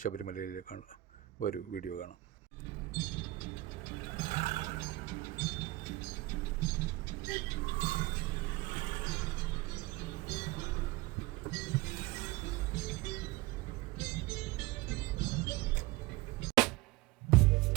ശബരിമലയിലേക്കാണ്. ഒരു വീഡിയോ കാണാം.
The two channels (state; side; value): quieter; left; 19.0 dB